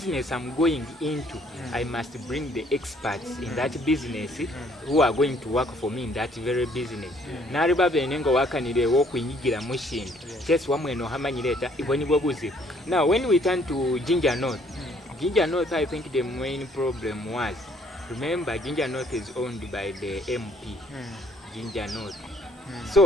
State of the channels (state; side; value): normal; both; correlation 0.63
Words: I'm going into, I must bring the experts in that business who are going to work for me in that very business. Nari babe nengo wakanire wo kunyigira mushinga. Just wamwe no hamanyireta iboni bobuzi. Now when we turn to Ginger North, I think the main problem was, remember Ginger North is owned by the MP. Ginger North.